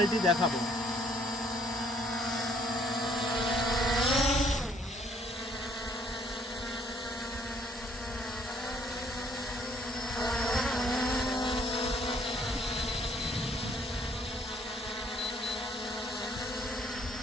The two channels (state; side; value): normal; both; correlation 0.64